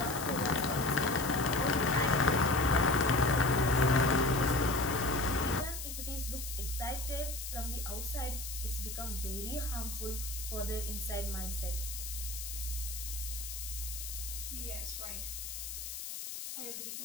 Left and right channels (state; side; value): noise; left; hiss, 7 dB below the sound